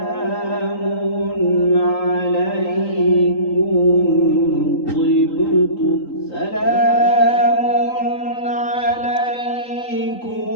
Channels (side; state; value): right; late; 3.8 ms